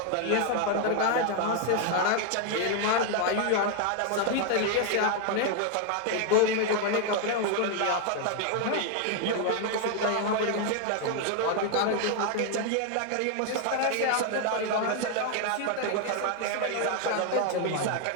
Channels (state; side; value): different; both; correlation 0.00